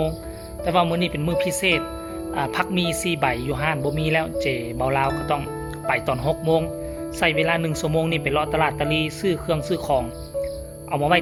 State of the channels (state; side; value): identical; both; correlation 1.00